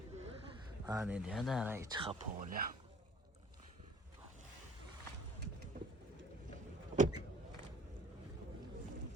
Ha dedi ya da ara içi kapı oluyor.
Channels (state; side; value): normal; both; correlation 0.51